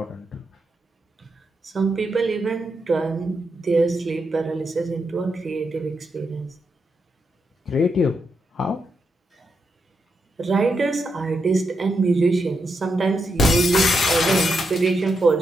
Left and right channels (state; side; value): normal; both; correlation 0.83